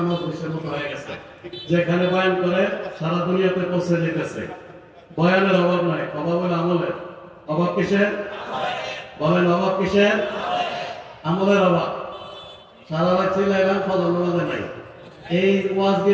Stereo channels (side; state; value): both; identical; correlation 1.00